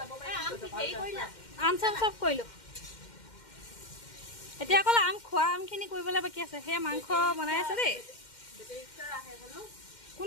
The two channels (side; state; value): right; late; 2.1 ms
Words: আম চাম চব কৰিলো এতিয়া অকল আম খোৱা আমখিনি কৰিবলৈ বাকী আছে সেয়া মাংস বনাই আছে দেই